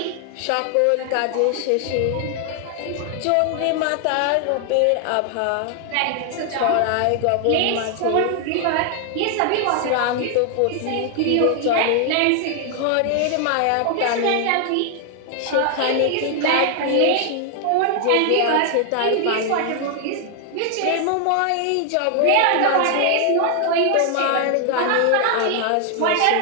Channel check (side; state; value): both; different; correlation 0.00